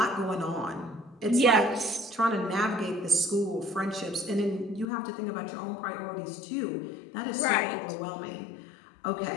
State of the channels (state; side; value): drops out; right; at 4.9 s